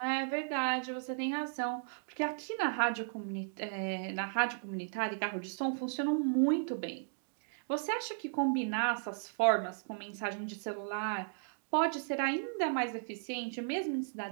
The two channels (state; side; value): silent; left; digital silence